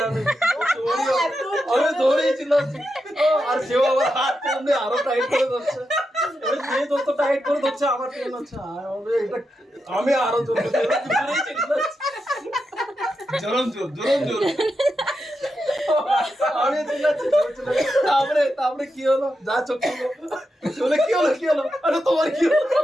আমি ধরেছিলাম আর সেও আবার হাত এমনি আরো টাইট করে ধরছে যে যত টাইট করে ধরছে আমার ট্রেন হচ্ছে আমি আরো জোর আমি তারপরে কি হলো যা চোখ কি হলো আরে তোমার কি হলো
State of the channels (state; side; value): normal; both; correlation 0.87